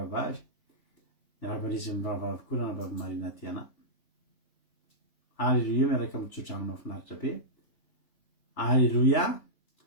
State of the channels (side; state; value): right; late; 3.4 ms